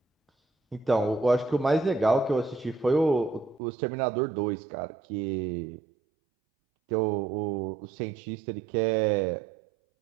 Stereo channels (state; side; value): drops out; left; at 3.6 s